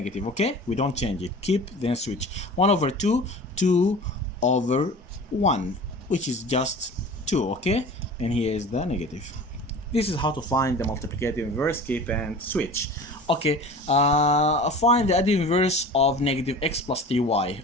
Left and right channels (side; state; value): both; normal; correlation 0.38